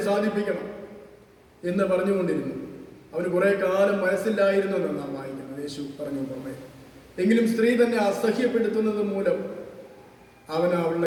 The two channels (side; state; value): both; identical; correlation 1.00